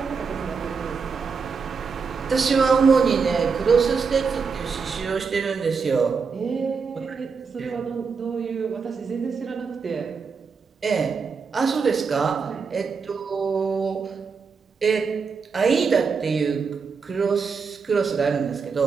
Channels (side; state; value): left; quieter; 5.4 dB